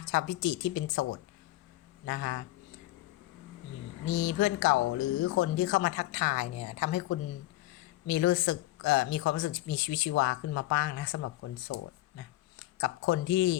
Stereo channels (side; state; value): right; quieter; 17.0 dB